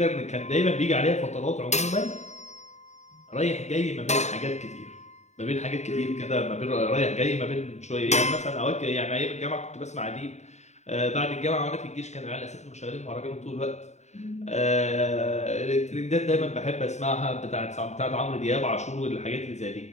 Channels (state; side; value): late; right; 0.33 ms